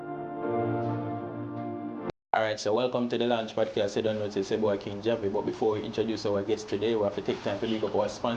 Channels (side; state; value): both; identical; correlation 1.00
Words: so welcome to the Launch Podcast. I don't know, it's your boy King Javi, but before we introduce our guest today, we have to take time to pick up our